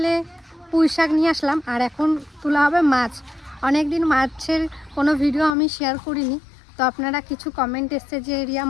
পুঁই শাক নিয়ে আসলাম, আর এখন তোলা হবে মাছ। অনেক দিন মাছের কোনো ভিডিও আমি শেয়ার করিনি, তো আপনারা কিছু কমেন্ট এসছে যে রিয়া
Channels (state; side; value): drops out; right; at 5.6 s